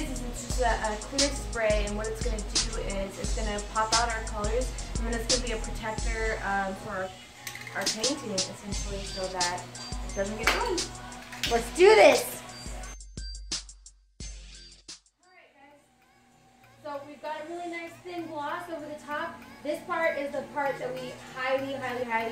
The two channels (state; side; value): identical; both; correlation 1.00